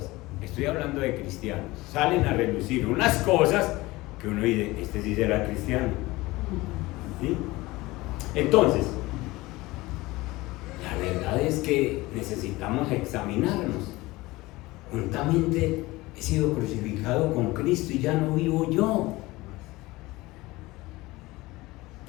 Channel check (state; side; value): quieter; right; 20.4 dB